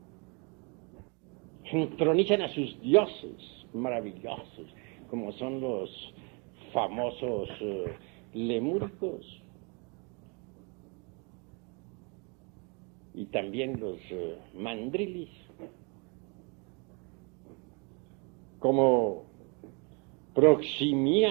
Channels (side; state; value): left; quieter; 33.0 dB